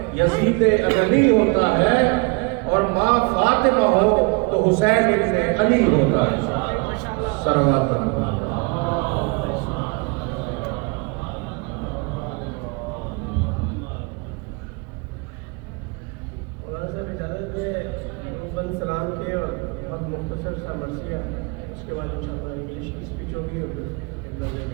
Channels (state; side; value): quieter; left; 28.8 dB